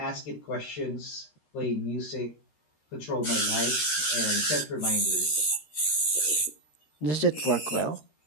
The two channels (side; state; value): right; late; 13 ms